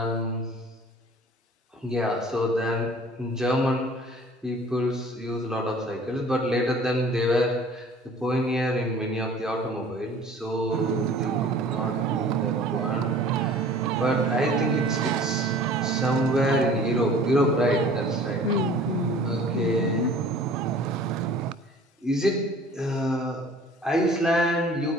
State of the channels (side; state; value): both; normal; correlation 0.48